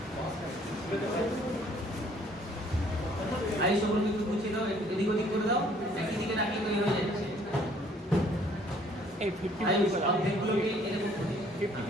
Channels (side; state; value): both; normal; correlation 0.60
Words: I সকল কিছু বুঝিয়ে দাও, এদিক ওদিক করে দাও, একই দিকে নাকি তৈরি হয়ে যাচ্ছে। এই 50 অর্ধেকগুলোকে এরকম